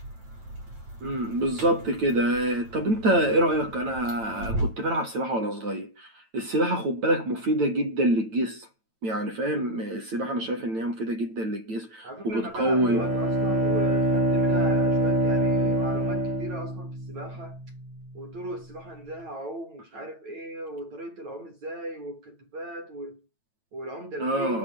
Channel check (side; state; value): left; late; 9.0 ms